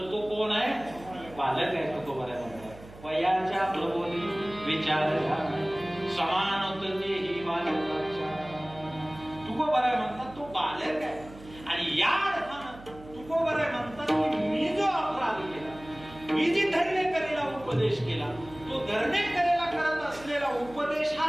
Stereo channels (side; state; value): right; noise; hum, 19 dB below the sound